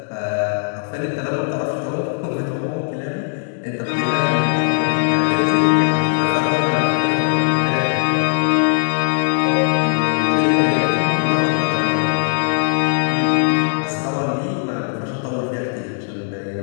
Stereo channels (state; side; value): silent; right; digital silence